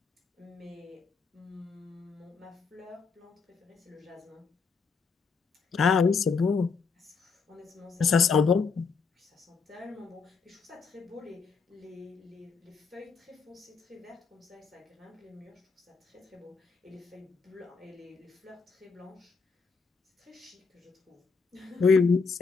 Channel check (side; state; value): right; quieter; 5.1 dB